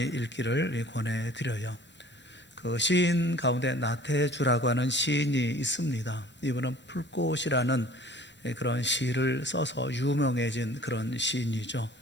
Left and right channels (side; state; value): both; normal; correlation 0.49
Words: 읽기를 권해드려요. 그 시인 가운데 나태주라고 하는 시인이 있습니다. 이분은 풀꽃이라는 그런 시를 써서 유명해진 그런 시인이죠.